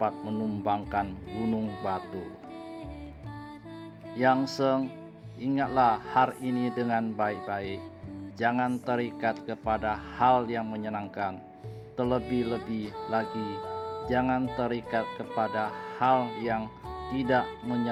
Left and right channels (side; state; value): both; identical; correlation 1.00